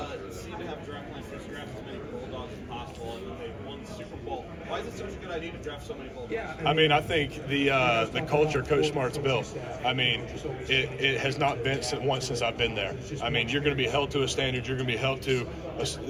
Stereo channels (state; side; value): identical; both; correlation 1.00